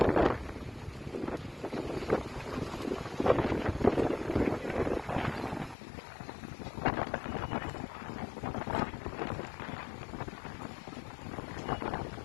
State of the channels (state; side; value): drops out; right; at 5.8 s